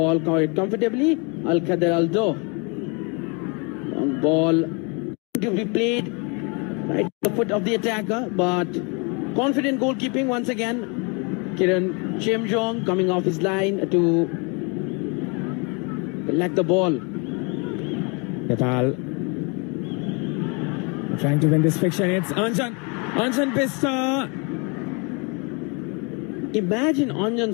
quite comfortably. Al Khader Al Do. Long ball to be played right at the foot of the attacker, but confident goalkeeping once again. Kiran Chemjong coming off his line to collect the ball. Nepal trying to win this fiction. It's Anjan Bista. Imagine Anjan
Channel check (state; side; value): quieter; right; 32.4 dB